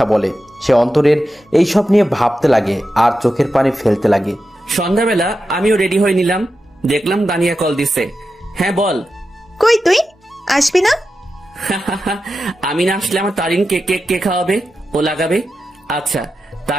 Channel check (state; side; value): normal; both; correlation 0.90